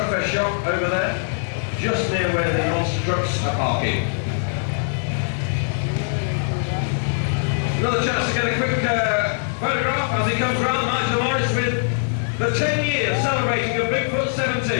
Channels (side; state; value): right; silent; digital silence